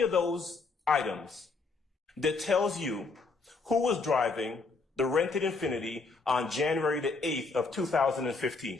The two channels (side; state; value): right; quieter; 4.0 dB